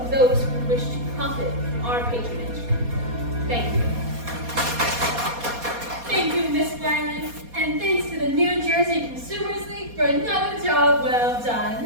those who wish to profit from our patronage. Thank you. Thank you, Miss Wiley, and thanks to the New Jersey Consumers League for another job well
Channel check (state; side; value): late; left; 4.2 ms